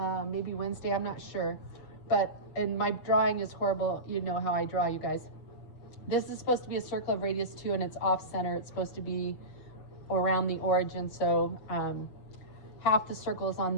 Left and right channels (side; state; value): right; late; 6.9 ms